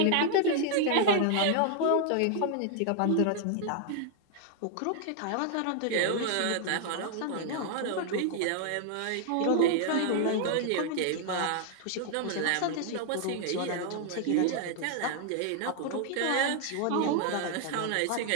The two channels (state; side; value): different; both; correlation 0.00